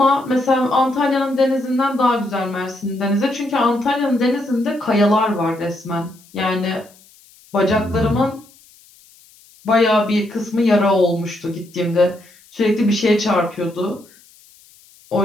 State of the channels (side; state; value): left; noise; hiss, 27 dB below the sound